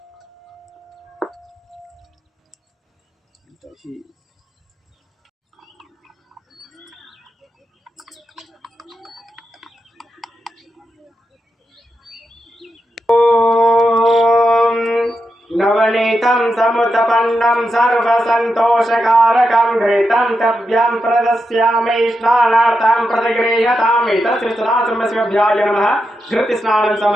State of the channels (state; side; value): normal; both; correlation 0.86